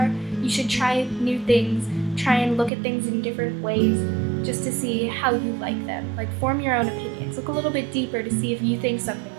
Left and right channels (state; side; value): drops out; left; at 2.7 s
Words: You should try new things, try and look at things in different ways just to see how you like them. Like, form your own opinions. Look a little bit deeper to see if you think something